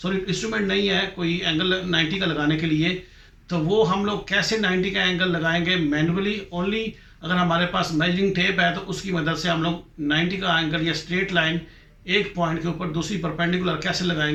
इंस्ट्रूमेंट नहीं है कोई एंगल 90 का लगाने के लिए, तो वो हम लोग कैसे 90 का एंगल लगाएंगे मैनुअली ओनली। अगर हमारे पास मेजरिंग टेप है तो उसकी मदद से हम लोग 90 का एंगल या स्ट्रेट लाइन एक पॉइंट के ऊपर दूसरी परपेंडिकुलर कैसे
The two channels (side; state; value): both; identical; correlation 1.00